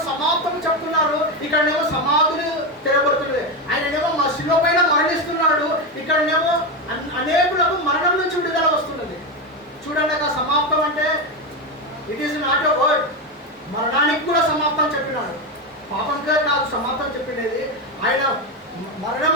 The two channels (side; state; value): both; normal; correlation 0.13